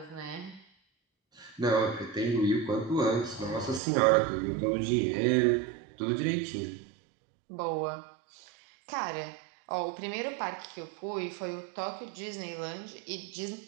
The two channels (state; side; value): drops out; left; at 3.8 s